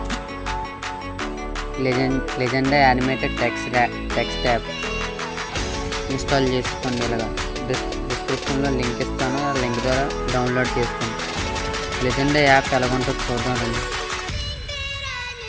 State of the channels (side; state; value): both; identical; correlation 1.00